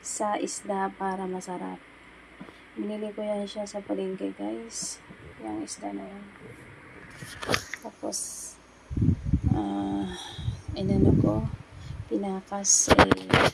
sa isda para masarap. Binili ko yan siya sa palengke guys. Yung isda na yan. Tapos, inano ko, pinakas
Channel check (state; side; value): identical; both; correlation 1.00